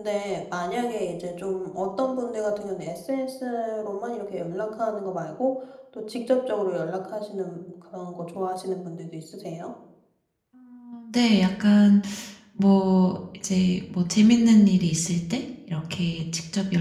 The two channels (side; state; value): both; identical; correlation 1.00